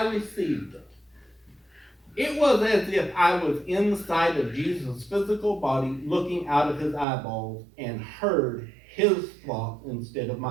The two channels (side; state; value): left; drops out; at 7.1 s